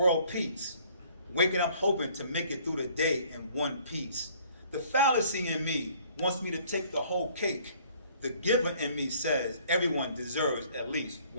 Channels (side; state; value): both; inverted; correlation -0.57